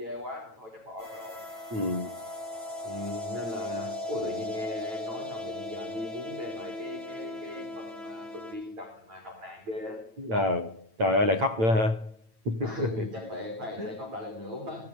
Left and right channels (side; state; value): left; late; 9.0 ms